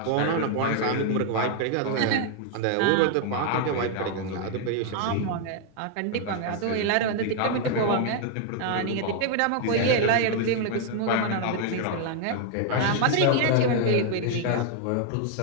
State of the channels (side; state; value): both; different; correlation 0.00